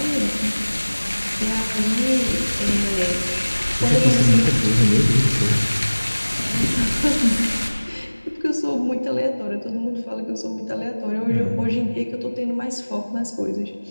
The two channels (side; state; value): both; inverted; correlation -1.00